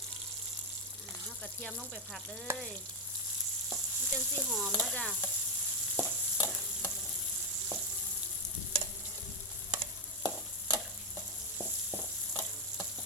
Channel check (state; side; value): normal; both; correlation 0.06